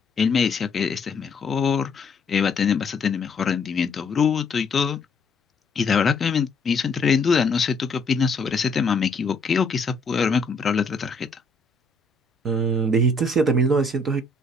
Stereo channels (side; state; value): right; quieter; 3.2 dB